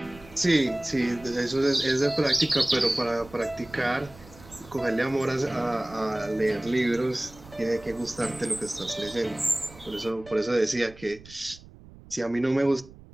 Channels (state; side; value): noise; right; rumble, 21 dB below the sound